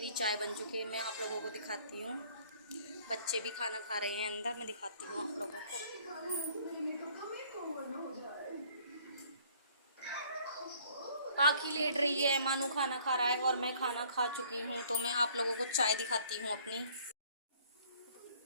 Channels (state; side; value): inverted; both; correlation -0.58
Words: चाय बन चुकी है, मैं आप लोगों को दिखाती हूँ। बच्चे भी खाना खा रहे हैं अंदर, मैं दिखाती हूँ आप लोगों को। पाखी लेट रही है, मानू खाना खा रहा है और मैं खाना खा चुकी हूँ। तो मैं आप लोगों को चाय दिखाती हूँ अपनी।